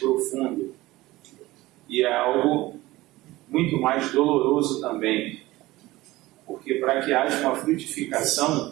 e é algo muito mais doloroso também, porque para que haja uma frutificação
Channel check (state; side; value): quieter; left; 18.5 dB